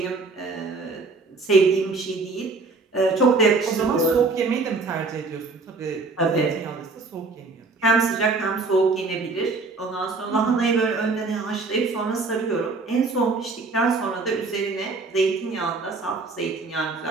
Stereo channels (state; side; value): quieter; left; 3.8 dB